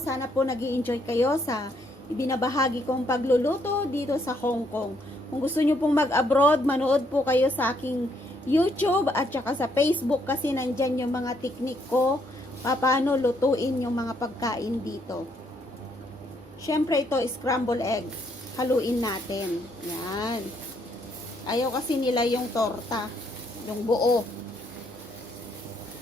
po nag-i-enjoy kayo sa ibinabahagi kong pagluluto dito sa Hong Kong. Kung gusto nyo pong mag-abroad, manood po kayo sa aking YouTube at saka sa Facebook kasi nandyan yung mga teknik ko paano lutuin yung mga pagkain dito. Siyempre ito, scramble egg. Haluin natin. Yan. Ayaw kasi nila yung torta. Yung buo.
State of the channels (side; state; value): both; normal; correlation 0.71